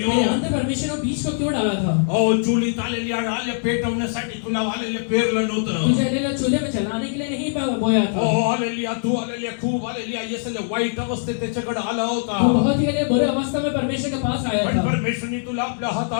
अंदर परमेश्वर ने बीज को क्यों डाला था Oh, चुलीत hallelujah, hallelujah, पेटवण्यासाठी तुला hallelujah पेरलं नव्हतं. तुझे लेना चूल्हे में जलाने के लिए नहीं बोया था Oh, hallelujah, तू hallelujah, खूप hallelujah, yes, hallelujah, वाईट अवस्थेत त्याच्याकडे आला होता. तू बहुत ही बुरे अवस्था में परमेश्वर के पास आया पण था परमेश्वरने तुला आपल्या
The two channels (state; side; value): silent; right; digital silence